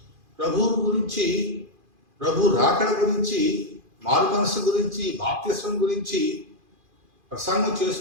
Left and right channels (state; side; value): late; left; 2.4 ms